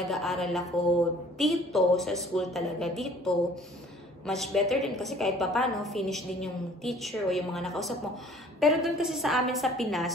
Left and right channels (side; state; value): both; normal; correlation 0.53